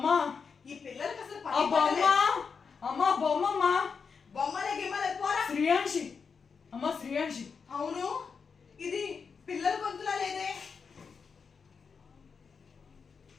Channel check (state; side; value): quieter; right; 5.7 dB